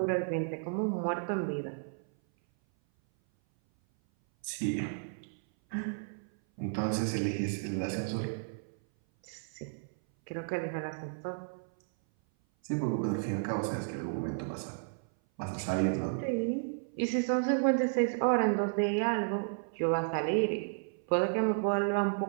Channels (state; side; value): silent; left; 56 dB below the other